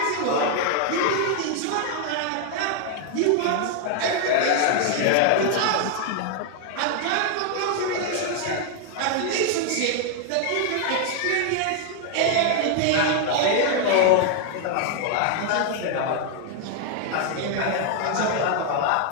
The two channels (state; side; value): different; both; correlation 0.00